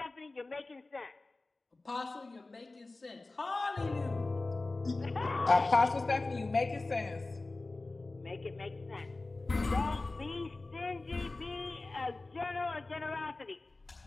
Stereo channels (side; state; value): right; quieter; 3.2 dB